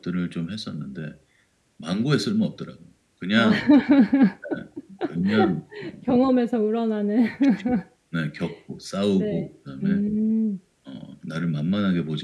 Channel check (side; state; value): both; identical; correlation 1.00